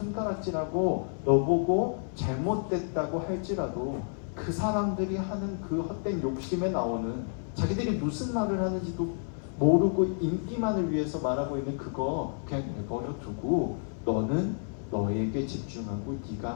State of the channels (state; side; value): silent; right; 58 dB below the other